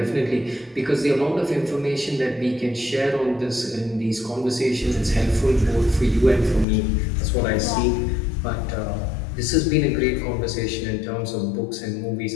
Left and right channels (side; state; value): right; drops out; at 6.7 s